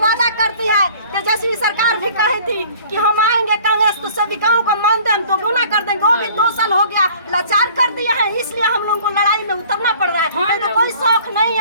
करती है। तेजस्वी सरकार भी कही थी कि हम आएंगे कांग्रेस तो सेविकाओं का मानदेय हम दोगुना कर देंगे। वो भी 2 साल हो गया लाचार कर दिया है, इसलिए हम लोगों को लड़ाई में उतरना पड़ रहा है। तो कोई शौक नहीं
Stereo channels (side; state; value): both; inverted; correlation -0.51